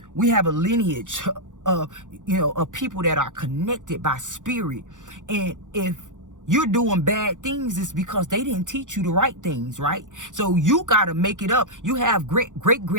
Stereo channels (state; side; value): late; left; 0.87 ms